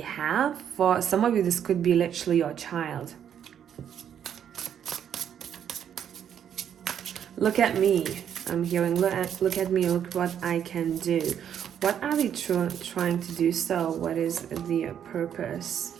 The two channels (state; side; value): quieter; left; 9.0 dB